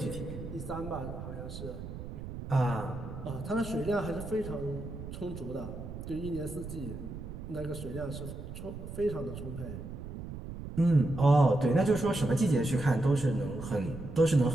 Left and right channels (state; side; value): noise; right; rumble, 9 dB below the sound